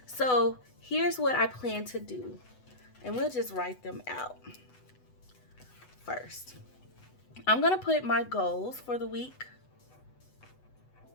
so here's what I plan to do. And we'll just write them out first. I'm gonna put my goals for the week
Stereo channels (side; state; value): right; late; 8.0 ms